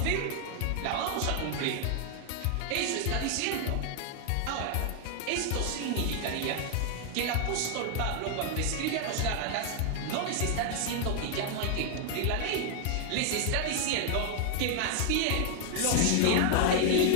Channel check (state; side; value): different; both; correlation 0.00